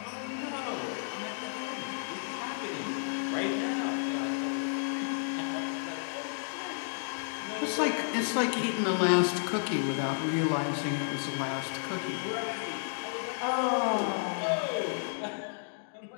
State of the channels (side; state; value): right; silent; digital silence